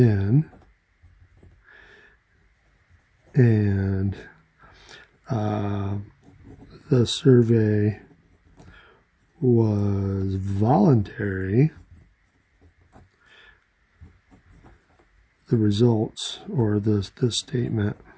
and the survey was voluntary, the results, or this statement,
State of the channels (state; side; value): identical; both; correlation 1.00